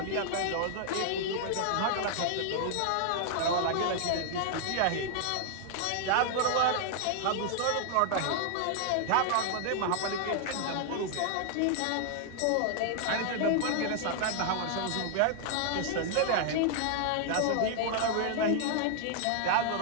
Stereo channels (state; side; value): different; both; correlation 0.00